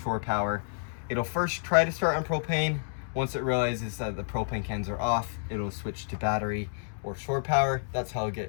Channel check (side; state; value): right; silent; digital silence